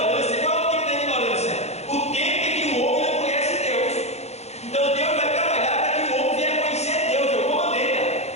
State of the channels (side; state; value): right; late; 0.31 ms